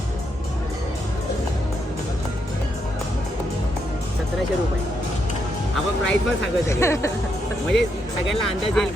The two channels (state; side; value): normal; both; correlation 0.79